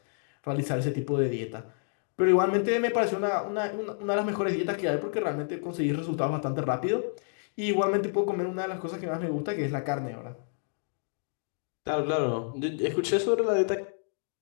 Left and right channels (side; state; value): right; silent; digital silence